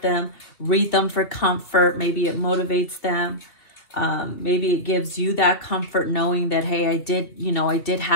them, read them for comfort. Maybe it motivates them. Maybe it gives you that comfort knowing that, hey, I did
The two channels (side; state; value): right; late; 2.8 ms